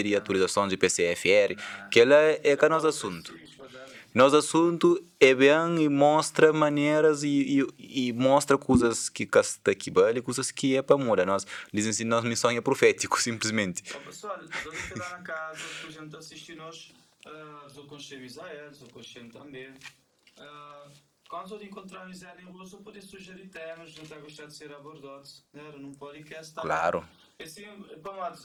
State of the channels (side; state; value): both; identical; correlation 1.00